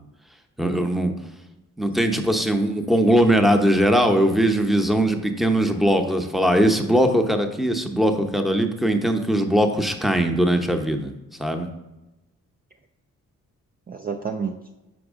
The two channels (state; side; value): normal; both; correlation 0.78